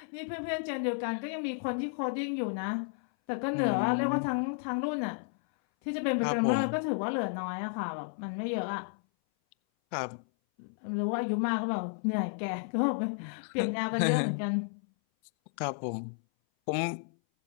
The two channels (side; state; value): right; silent; 56 dB below the other